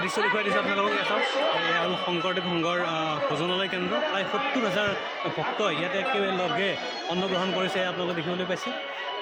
দৃশ্য দেখুৱাই দিছোঁ আপোনালোকক। এয়া চাওক, এয়া হ'ল শংকৰদেৱ সংঘৰ ভোজনালয় কেন্দ্ৰ। প্ৰায় 70,000 ভক্ত ইয়াতে একেলগে অন্ন গ্ৰহণ কৰিছে, আপোনালোকে দেখিবলৈ পাইছে।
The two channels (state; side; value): identical; both; correlation 1.00